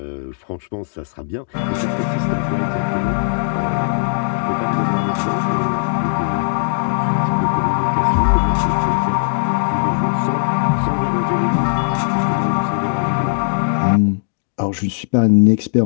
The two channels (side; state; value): right; silent; digital silence